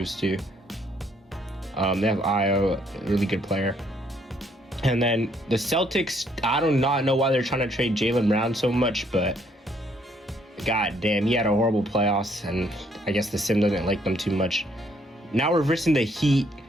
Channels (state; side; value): normal; both; correlation 0.68